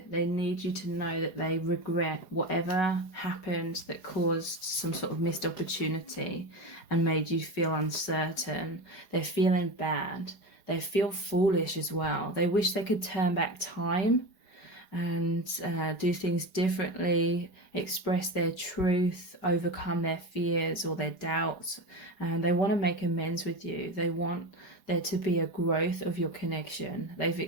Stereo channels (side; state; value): right; late; 4.9 ms